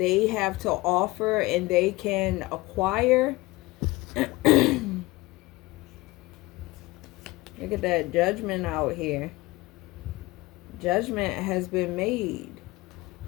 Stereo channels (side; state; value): right; quieter; 21.0 dB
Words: have to offer and they can acquire. Look at that Judgment out here. Judgment has been made.